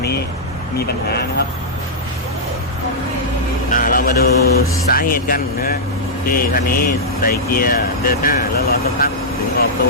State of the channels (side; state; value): both; normal; correlation -0.09